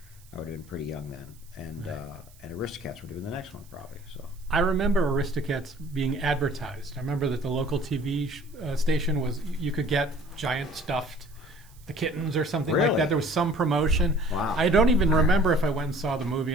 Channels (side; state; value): right; noise; hiss, 27 dB below the sound